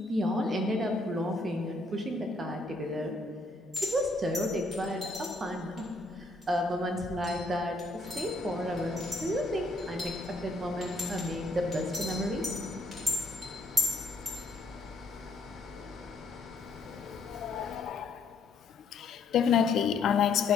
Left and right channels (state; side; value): quieter; right; 3.0 dB